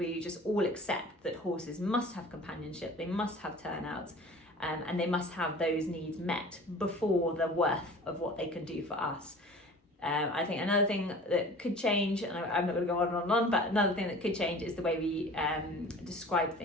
just all accept that horses must have companionship, they must have turnouts, and they must have those needs met before the worth of what they can do for us. I think another thing that could change, and I'm not going to go on and on, but another thing that could change is the way we describe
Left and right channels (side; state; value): both; normal; correlation 0.43